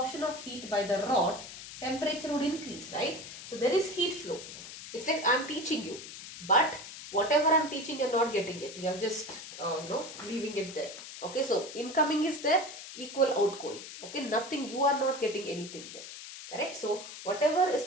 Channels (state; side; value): noise; left; hiss, 12 dB below the sound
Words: of heat by the rod, temperature would increase, right? So there is heat flow. It's like I'm teaching you, but whatever I'm teaching, you're not getting it. You're just leaving it there. Okay, so incoming is there, equal outgoing. Okay, nothing, you are not getting anything there. Correct? So whatever is